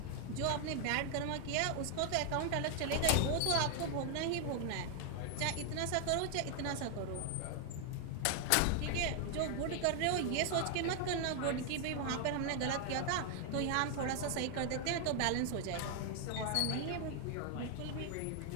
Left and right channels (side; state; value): both; different; correlation 0.00